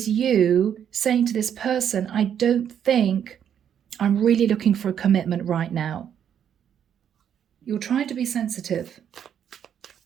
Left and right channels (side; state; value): left; quieter; 8.9 dB